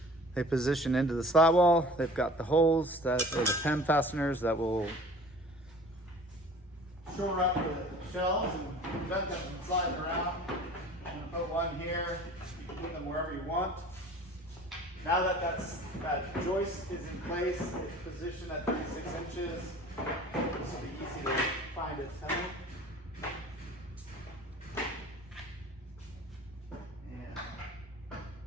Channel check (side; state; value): both; normal; correlation 0.45